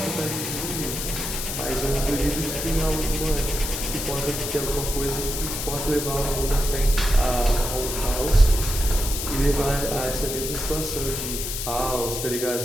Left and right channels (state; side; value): noise; left; hiss, 4 dB below the sound